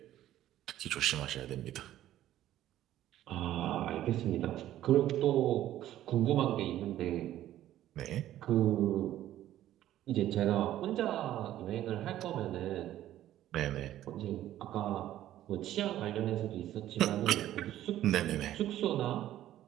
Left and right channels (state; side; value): quieter; left; 13.0 dB